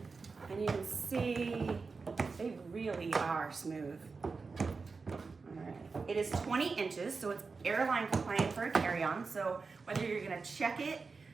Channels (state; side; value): quieter; left; 4.5 dB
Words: and you can see they really are smooth. All right. It is 20 inches, so it's airline compliant for a carry-on. So whether you're gonna check it